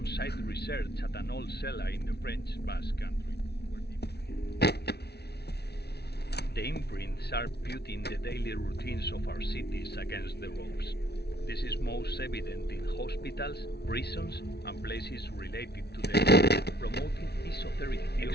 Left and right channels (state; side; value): late; right; 0.48 ms